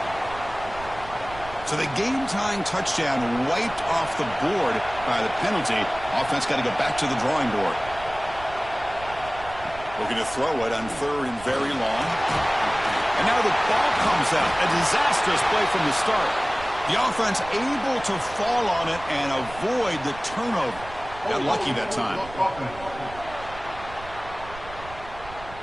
So the game-tying touchdown wiped off the board by the penalty. Offense got to go back to the drawing board. Looking to throw it on 3rd and very long. And now the ball comes out. A disastrous play from the start. The offense able to fall on it and avoid the turnover. Got lucky that time.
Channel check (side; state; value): right; noise; rumble, 16 dB below the sound